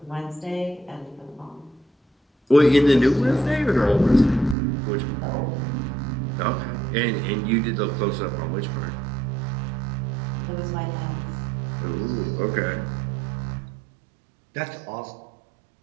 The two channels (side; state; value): left; drops out; at 4.5 s